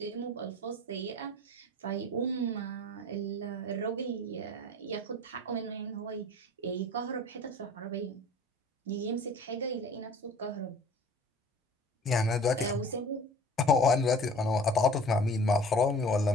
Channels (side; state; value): both; normal; correlation 0.45